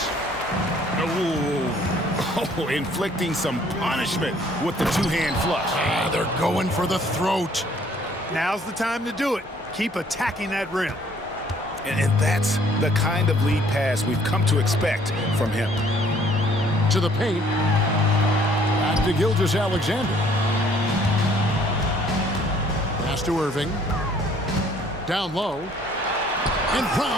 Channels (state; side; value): normal; both; correlation 0.60